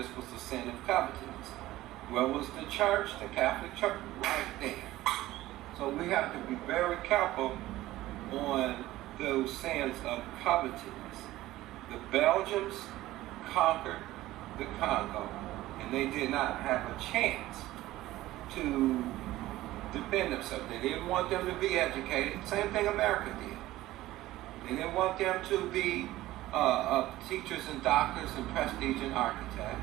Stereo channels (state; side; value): quieter; left; 16.2 dB